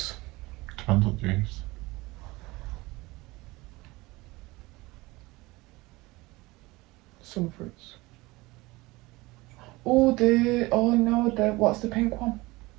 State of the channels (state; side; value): quieter; left; 21.6 dB